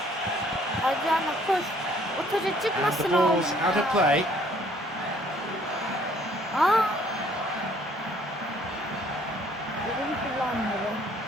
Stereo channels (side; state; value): both; normal; correlation 0.61